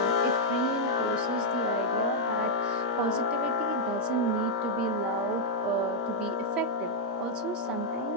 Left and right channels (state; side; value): normal; both; correlation -0.04